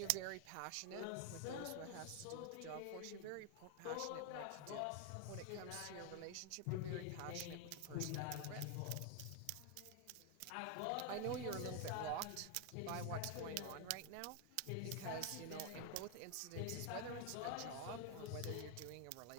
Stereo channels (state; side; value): different; both; correlation 0.01